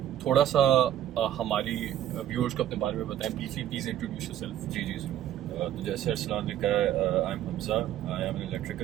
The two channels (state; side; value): quieter; left; 11.4 dB